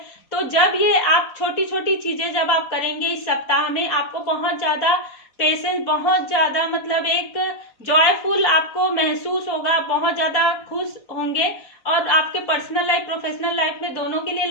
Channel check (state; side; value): late; right; 4.1 ms